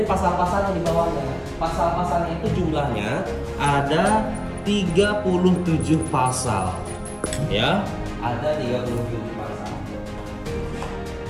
pasal-pasal yang di bawahnya. Pasal-pasalnya itu jumlahnya ada 37 pasal. Ya, ada 37 pasal.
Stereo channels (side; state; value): both; identical; correlation 1.00